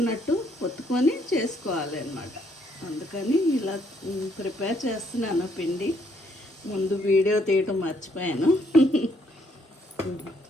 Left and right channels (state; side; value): normal; both; correlation 0.69